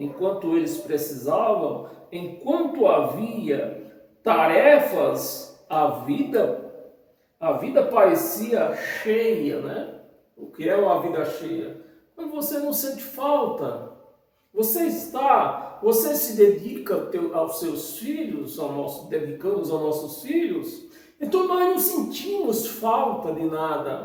havia tarefas, a vida parecia cheia, né? O que é uma vida cheia? Mas você não sente falta. Você se dedica aos seus filhos, dedicamos aos nossos filhos. Então nós não sentimos falta de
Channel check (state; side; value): identical; both; correlation 1.00